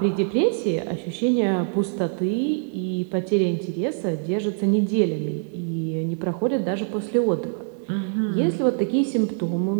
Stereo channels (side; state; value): left; silent; 63 dB below the other